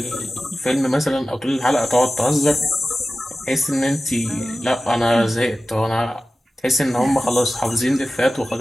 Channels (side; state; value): both; normal; correlation 0.95